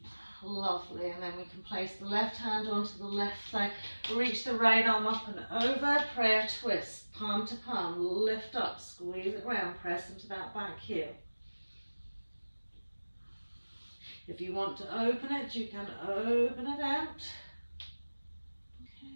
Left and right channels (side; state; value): both; inverted; correlation -1.00